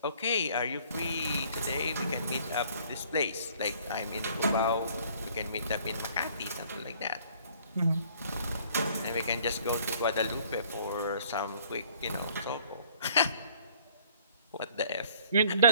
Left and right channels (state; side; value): inverted; both; correlation -0.58